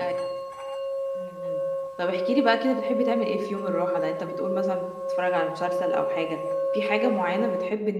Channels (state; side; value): identical; both; correlation 1.00